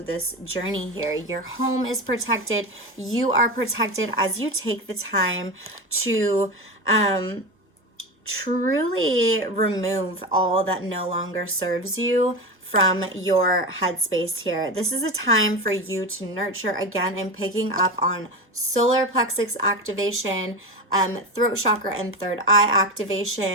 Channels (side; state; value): both; normal; correlation 0.21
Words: this journey here. Your home is protected. You are protected as you take the time to truly remove all that no longer serves you from your headspace here. This is a time for you to nurture again and picking up on solar plexus activation, throat chakra and third eye